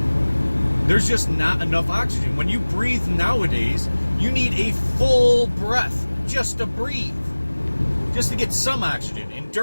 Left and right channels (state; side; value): inverted; both; correlation -1.00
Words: There's just not enough oxygen. When you breathe nowadays, you need a full breath just to breathe, just to get some oxygen. And